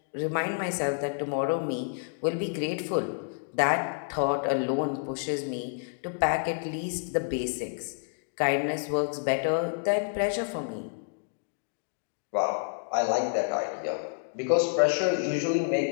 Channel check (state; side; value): silent; right; digital silence